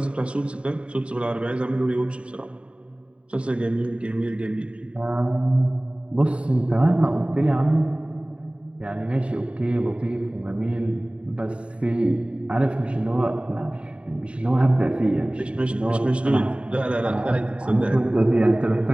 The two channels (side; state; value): left; late; 0.059 ms